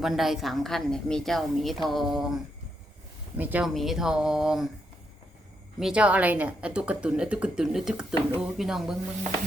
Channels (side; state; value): both; normal; correlation 0.80